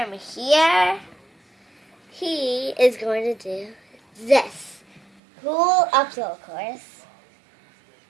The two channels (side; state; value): left; drops out; at 5.2 s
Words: here. He is going to do this. Cool obstacle course.